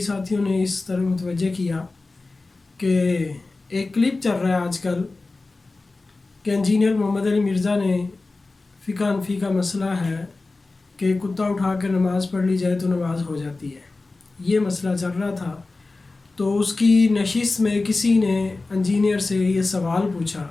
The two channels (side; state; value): right; quieter; 3.5 dB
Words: ساتھیوں نے اس طرح متوجہ کیا کہ ایک کلپ چل رہا ہے آج کل کہ انجینئر محمد علی مرزا نے فقہ حنفی کا مسئلہ ہے کہ کتا اٹھا کر نماز پڑھ لی جائے تو نماز ہو جاتی ہے، یہ مسئلہ چل رہا تھا۔ تو اس کی نشست میں کسی نے انجینئر سے یہ سوال پوچھا